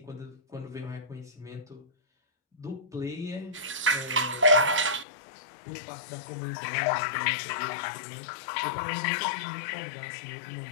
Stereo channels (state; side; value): drops out; right; at 5.1 s